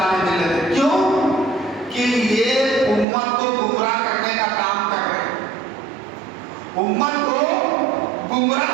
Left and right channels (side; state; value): left; drops out; at 3.1 s